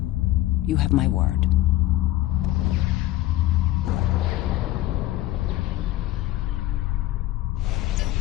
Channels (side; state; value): right; quieter; 15.7 dB